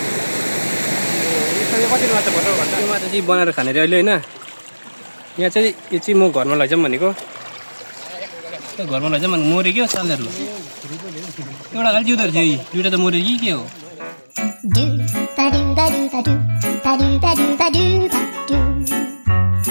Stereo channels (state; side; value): inverted; both; correlation -1.00